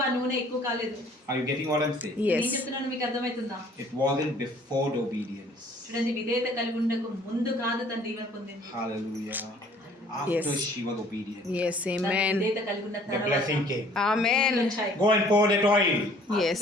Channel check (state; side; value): normal; both; correlation 0.56